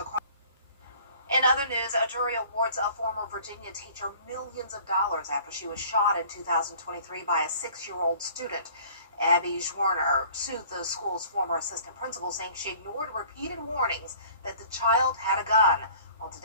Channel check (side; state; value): both; inverted; correlation -0.50